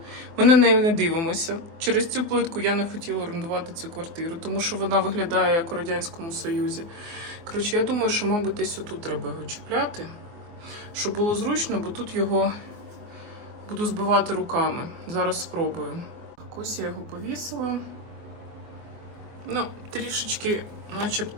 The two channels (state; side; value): late; left; 24 ms